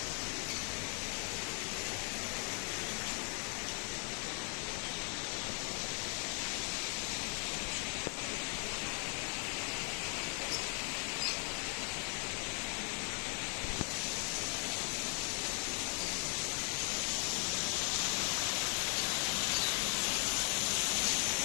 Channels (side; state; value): right; quieter; 39.3 dB